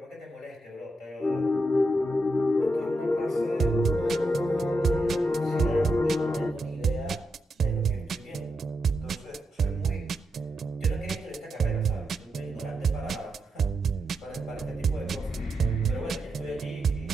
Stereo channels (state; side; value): normal; both; correlation 0.85